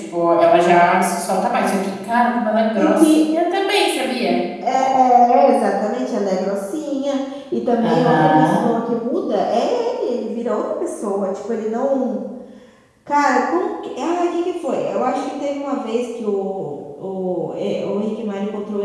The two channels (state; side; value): identical; both; correlation 1.00